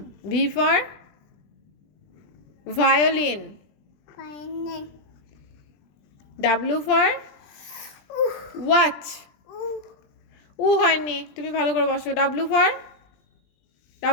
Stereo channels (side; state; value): right; late; 20 ms